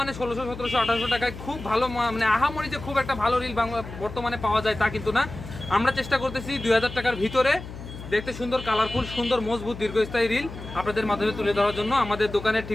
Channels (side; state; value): left; noise; hum, 12 dB below the sound